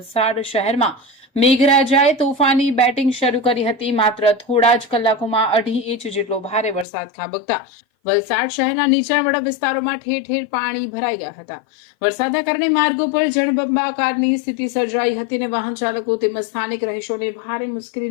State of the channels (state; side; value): drops out; right; at 6.9 s